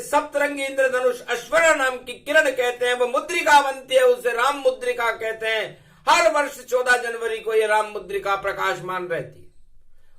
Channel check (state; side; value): identical; both; correlation 1.00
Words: सप्तरंगी इंद्रधनुष अश्वना नाम की किरण कहते हैं, वो मुद्रिका बनती है, उसे राम मुद्रिका कहते हैं। हर वर्ष 14 जनवरी को यह राम मुद्रिका प्रकाशमान रहती है।